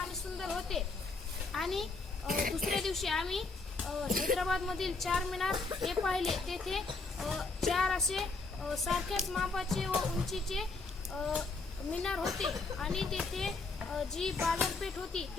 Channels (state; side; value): quieter; right; 3.8 dB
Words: सुंदर होते. आणि दुसऱ्या दिवशी आम्ही हैदराबादमधील चारमिनार हे पाहिले. तेथे चार असे सारख्याच मापाचे व उंचीचे मिनार होते आणि तेथे जी बाजारपेठ होती